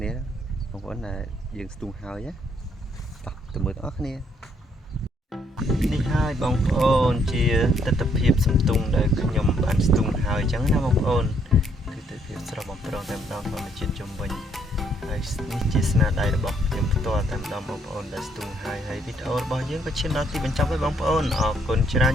នាបងប្អូនដែលយើងស្ទូងហើយណាទៅមើលបងប្អូនគ្នានេះហើយបងប្អូនជាទស្សនវិជ្ជាសំទុងដែលខ្ញុំបានស្ទូងហើយអញ្ចឹងណាបងប្អូនគឺទៅភាពស្រស់បំព្រងតែម្ដងធម្មជាតិជំវិញហើយនេះជាស្នាដៃរបស់ខ្ញុំផ្ទាល់តែម្ដងបងប្អូនដែលស្ទូងហើយវីដេអូរបស់យើងក៏ឈានដល់ទីបញ្ចប់ហើយបងប្អូនអរគុណច្រើន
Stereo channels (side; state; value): both; normal; correlation 0.70